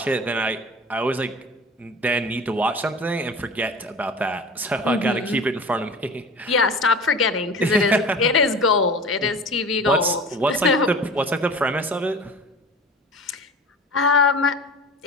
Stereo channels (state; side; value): normal; both; correlation 0.37